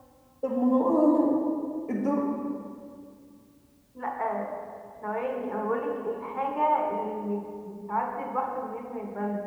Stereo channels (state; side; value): identical; both; correlation 1.00